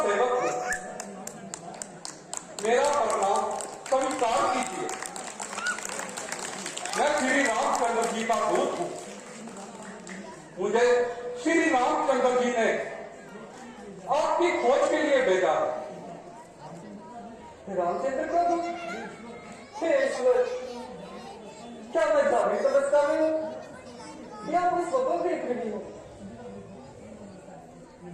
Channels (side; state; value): both; identical; correlation 1.00